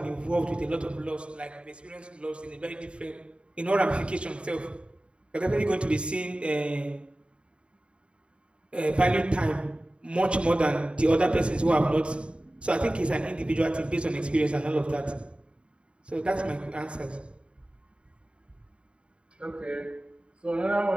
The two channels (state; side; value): late; left; 0.056 ms